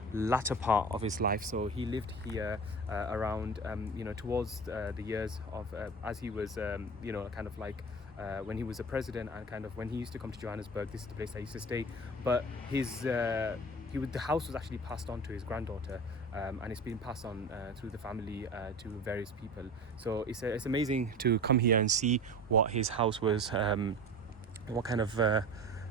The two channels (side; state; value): both; normal; correlation 0.34